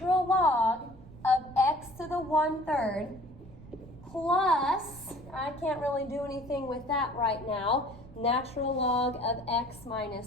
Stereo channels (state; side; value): noise; right; rumble, 19 dB below the sound